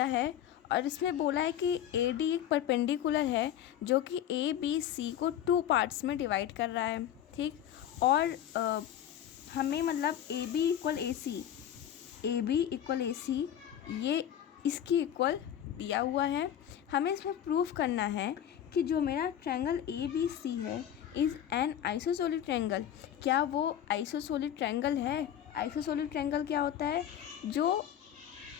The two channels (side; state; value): right; quieter; 10.3 dB